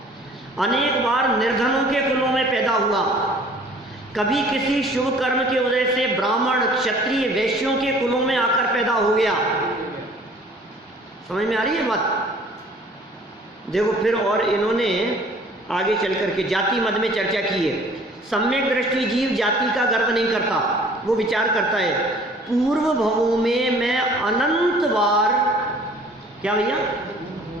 अनेक बार निर्धनों के कुलों में पैदा हुआ। कभी किसी शुभ कर्म की वजह से ब्राह्मण क्षत्रिय वैश्यों के कुलों में आकर पैदा हो गया। समझ में आ रही है बात? देखो फिर और इन्होंने आगे चल करके जाति मत में चर्चा की है। सम्यक दृष्टि जीव जाति का गर्व नहीं करता, वो विचार करता है पूर्व भवों में मैं अनंत बार, क्या भैया,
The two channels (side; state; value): both; normal; correlation 0.52